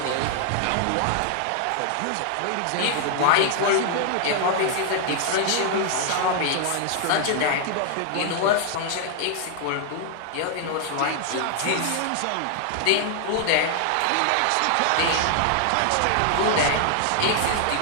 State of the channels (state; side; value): different; both; correlation 0.00